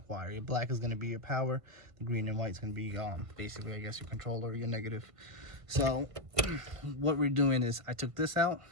wire. Your black is going to be your power. The green and white is going to be basically, I guess, your controller, your negative. So what we're doing is I took this out.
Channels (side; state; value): left; late; 1.5 ms